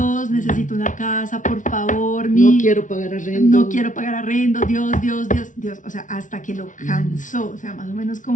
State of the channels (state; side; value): late; right; 0.37 ms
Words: necesito una casa, por favor. No quiero pagar arrendo. No quiero pagar arrendo, Dios. O sea, hasta que lo cansó, o sea, más o menos